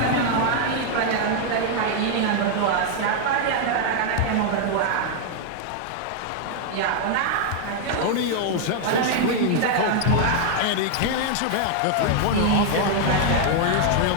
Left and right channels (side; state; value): both; different; correlation 0.00